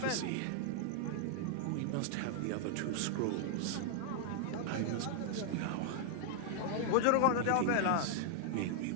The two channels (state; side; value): different; both; correlation 0.00